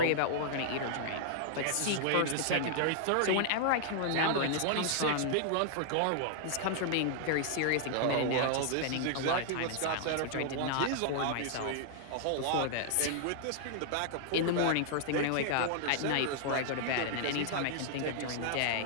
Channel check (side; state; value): both; different; correlation -0.01